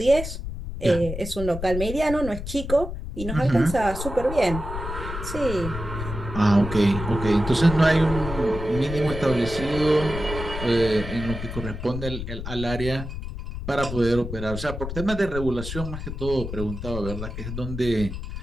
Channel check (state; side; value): noise; left; rumble, 7 dB below the sound